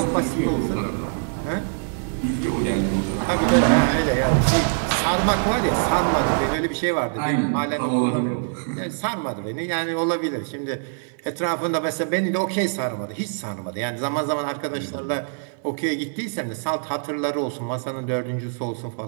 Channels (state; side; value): silent; left; digital silence